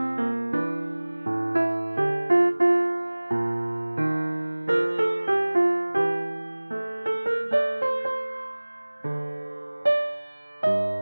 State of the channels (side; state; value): both; inverted; correlation -1.00